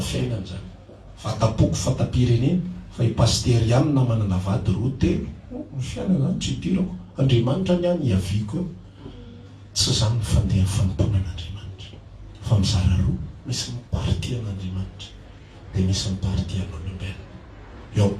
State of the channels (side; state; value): both; identical; correlation 1.00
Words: fiainana zany. Fataboky, fatam-pirenena, fa ipasterianina manana vady roa telo. Ny fiainana zany tsy idirako. Andriamanitra ny any iaviko eo. Tsy zany ny fandeha fanompona an'Andriamanitra. Fa mizara roa, misy ny party an'Andriamanitra, dia misy ny party an'olombelona. Eo amin'ny